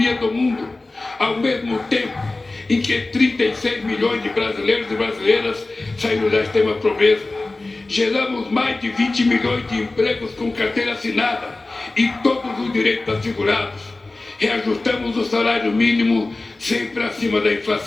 do mundo, ao mesmo tempo em que 36 milhões de brasileiros e brasileiras saíram da extrema pobreza. Geramos mais de 20 milhões de empregos com carteira assinada e todos os direitos assegurados. Reajustamos o salário mínimo sempre acima da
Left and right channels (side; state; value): right; quieter; 3.1 dB